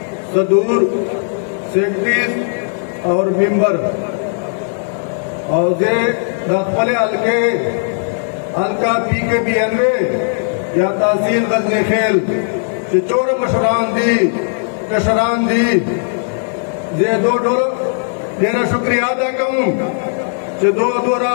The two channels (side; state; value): right; silent; 67 dB below the other